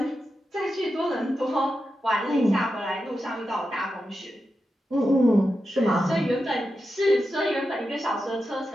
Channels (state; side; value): normal; both; correlation 0.89